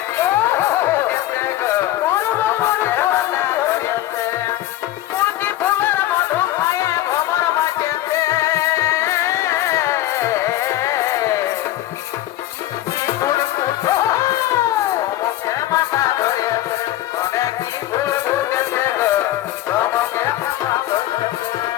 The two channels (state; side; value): quieter; right; 14.5 dB